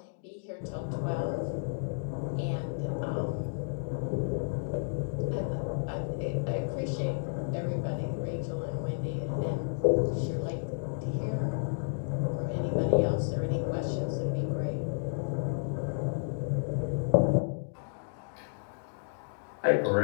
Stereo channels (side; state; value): right; silent; digital silence